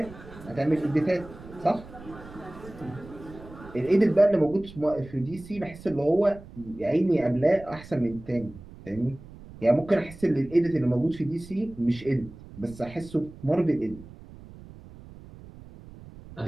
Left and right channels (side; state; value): right; noise; rumble, 17 dB below the sound